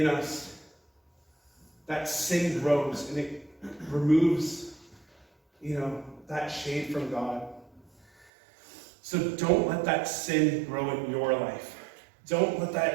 us, that sin grows and it removes, that shade from God. So don't let that sin grow in your life. Don't let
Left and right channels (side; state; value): left; drops out; at 8.2 s